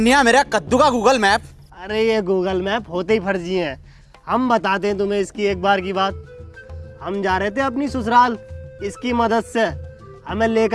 मेरा कद्दू का गूगल मैप। अरे ये गूगल मैप होते ही फर्जी हैं। हम बताते हैं तुम्हें इसकी एक बार की बात। हम जा रहे थे अपनी ससुराल, इसकी मदद से हमें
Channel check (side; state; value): both; identical; correlation 1.00